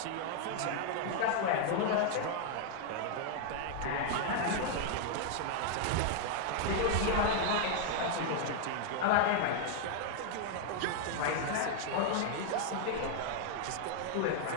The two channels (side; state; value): both; different; correlation 0.00